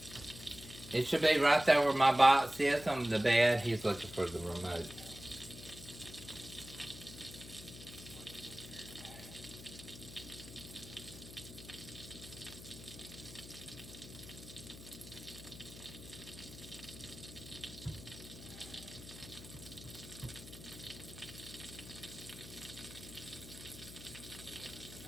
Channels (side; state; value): left; noise; hum, 14 dB below the sound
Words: It should be right there where my box is on the bed. He's looking for the remote.